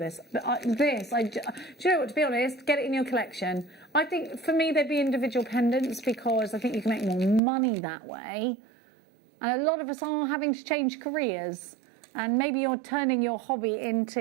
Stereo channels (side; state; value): left; drops out; at 7.4 s